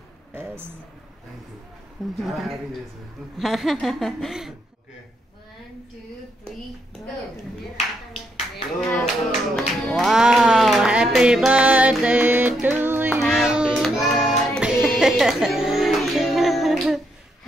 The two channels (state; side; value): normal; both; correlation 0.77